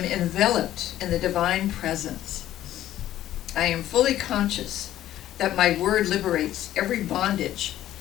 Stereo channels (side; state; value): right; quieter; 13.0 dB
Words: enveloped in the divine presence. I am fully conscious that my word liberates every bondage,